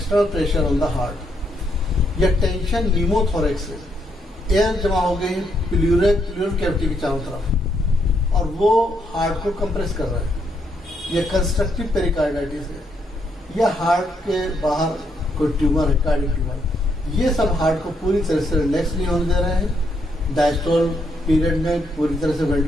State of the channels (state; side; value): normal; both; correlation 0.76